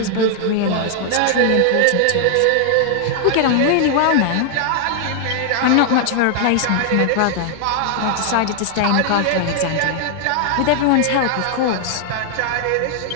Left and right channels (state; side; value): different; both; correlation 0.00